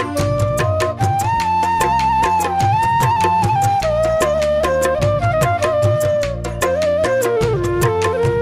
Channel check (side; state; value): both; identical; correlation 1.00